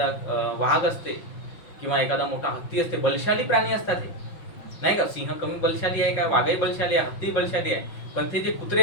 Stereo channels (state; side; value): late; right; 5.6 ms